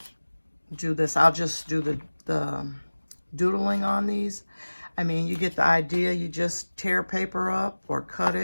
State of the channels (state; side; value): inverted; both; correlation -1.00